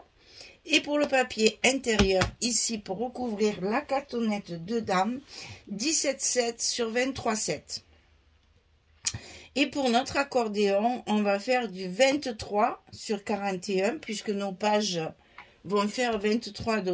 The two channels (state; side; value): identical; both; correlation 1.00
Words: Et pour le papier intérieur, ici, pour recouvrir la cartonnette dedans, 17,7 sur 23,7. Et pour notre accordéon, on va faire du 23 sur 41, puisque nos pages vont faire 23 de